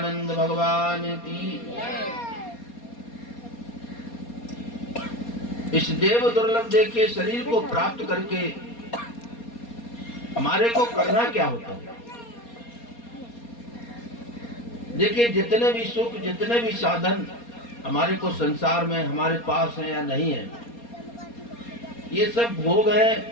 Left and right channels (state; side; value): late; right; 4.2 ms